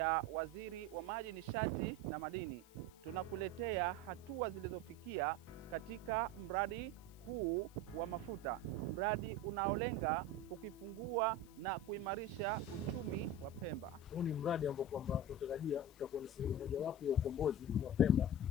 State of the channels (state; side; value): noise; left; hiss, 25 dB below the sound